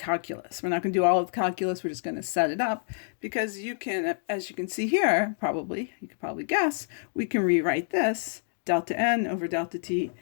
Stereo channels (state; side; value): silent; right; digital silence